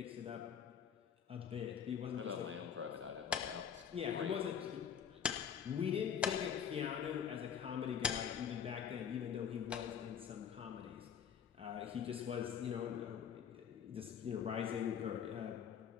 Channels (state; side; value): quieter; right; 8.0 dB